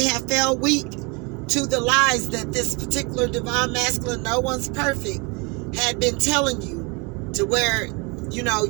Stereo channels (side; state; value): left; quieter; 30.0 dB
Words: have fell weak to the lies that this particular divine masculine, no one's perfect, had been telling you, to where, you know,